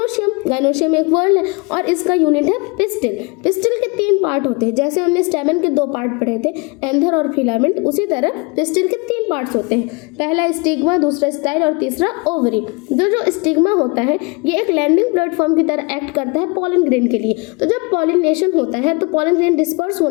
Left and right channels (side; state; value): right; quieter; 29.1 dB